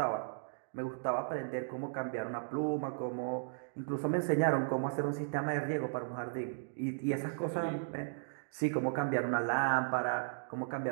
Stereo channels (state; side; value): silent; left; digital silence